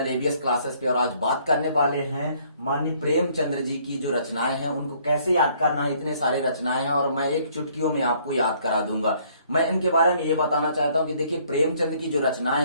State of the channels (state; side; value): inverted; both; correlation -0.63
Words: एबीएस क्लासेस पे। और आज बात करने वाले हैं माननीय प्रेमचंद्र जी की जो रचनाएं हैं उनको कैसे याद करना है। इतने सारे रचनाएं हैं और मैं एक चुटकियों में आपको याद करा दूंगा। मैं इनके बारे में ये बताना चाहता हूं कि देखिए, प्रेमचंद की जो